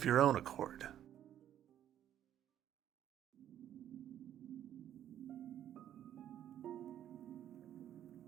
your own accord.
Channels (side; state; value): left; quieter; 10.9 dB